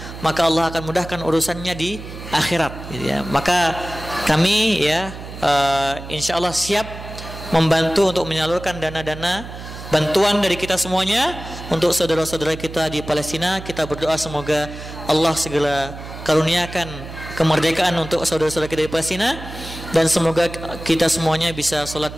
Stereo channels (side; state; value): right; noise; hum, 12 dB below the sound